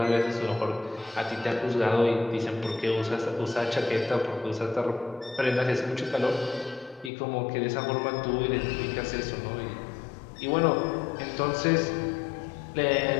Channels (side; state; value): right; drops out; at 7.1 s